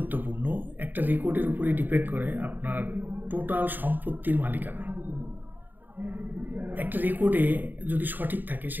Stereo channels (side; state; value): left; late; 0.089 ms